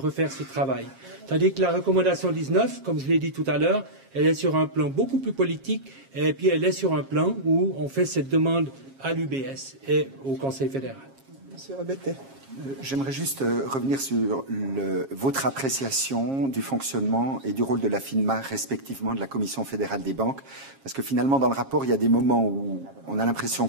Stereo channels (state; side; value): late; left; 7.4 ms